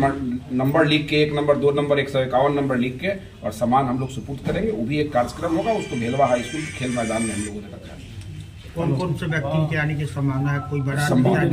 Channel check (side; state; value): both; identical; correlation 1.00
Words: लिख के, 1 नंबर 2 नंबर 151 नंबर लिख के और सामान हम लोग सुपुर्द करेंगे। वो भी एक कार्यक्रम होगा, उसको भेलवा हाई स्कूल के खेल मैदान में हम लोगों ने रखा है। कौन से व्यक्ति के आने की संभावना है? कोई बड़ा